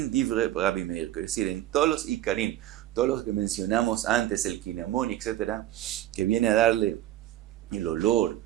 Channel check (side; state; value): left; quieter; 13.6 dB